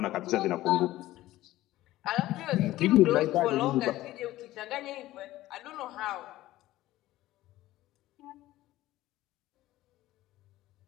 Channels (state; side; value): quieter; right; 16.0 dB